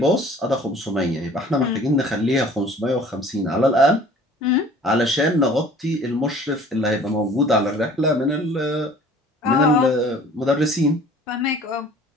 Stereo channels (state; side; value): normal; both; correlation 0.49